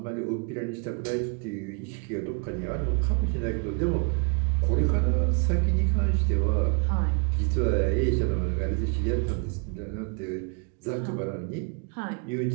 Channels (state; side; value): quieter; left; 36.4 dB